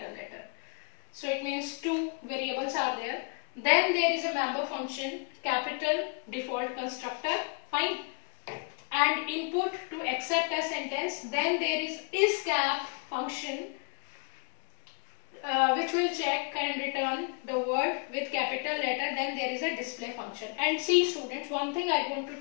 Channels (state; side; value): quieter; right; 35.1 dB